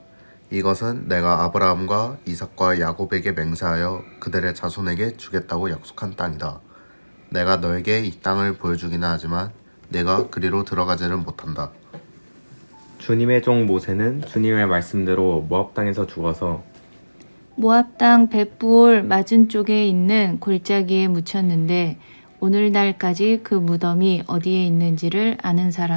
이것은 내가 아브라함과 이삭과 야곱에게 맹세하여 그들의 자손에게 주겠다고 약속한 땅이다. 내가 너에게 이 땅을 보여주기는 하지만 내가 그리로 들어가지는 못한다. 주님의 종 모세는 주님의 말씀대로 모압 땅에서 죽어서 모압 땅 벳부올 맞은 쪽에 있는 골짜기에 묻혔는데 오늘날까지 그 무덤이 어디에 있는지를 아는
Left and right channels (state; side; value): inverted; both; correlation -1.00